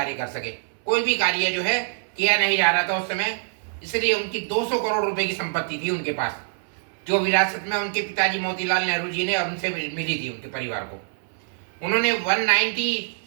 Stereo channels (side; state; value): left; silent; 61 dB below the other